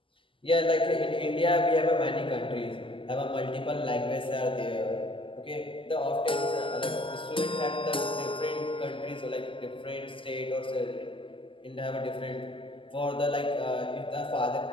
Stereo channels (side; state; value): right; late; 0.25 ms